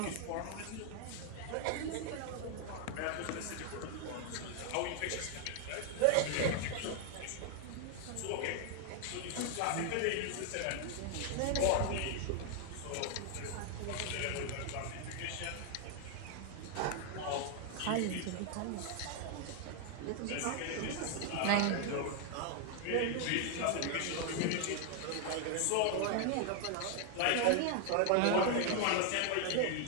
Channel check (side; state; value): both; different; correlation 0.00